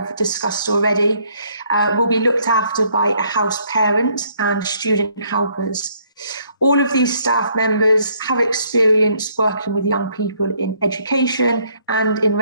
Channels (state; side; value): inverted; both; correlation -0.67